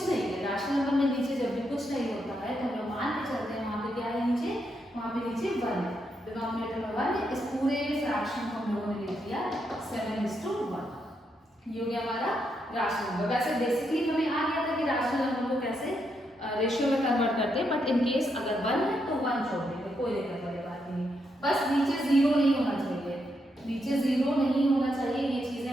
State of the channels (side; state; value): both; normal; correlation 0.80